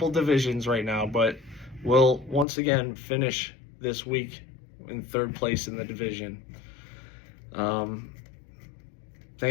divisions right now, but will once again finish this week in 3rd place in the division.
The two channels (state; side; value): drops out; right; at 2.5 s